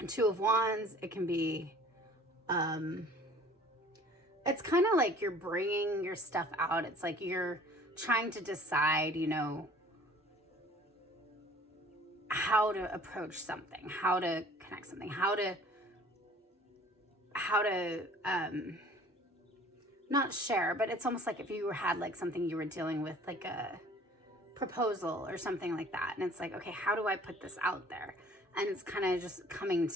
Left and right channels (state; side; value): normal; both; correlation 0.51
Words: Two of Wands, it can be, it's kind of like you're bringing your stuff out. It's like you're trying to decide, you know, how to approach something, how to connect something, how to not share, but it's almost like if you had like something you were dealing with, like a proposal or something like that. And it's like, okay, how do I put this out there? And it's kind of just coming